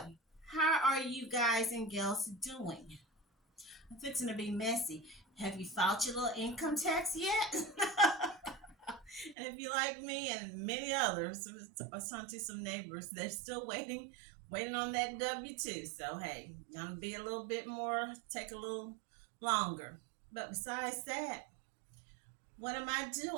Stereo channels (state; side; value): drops out; left; at 9.3 s